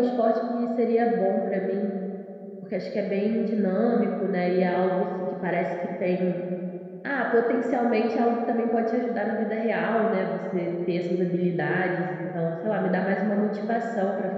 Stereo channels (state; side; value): identical; both; correlation 1.00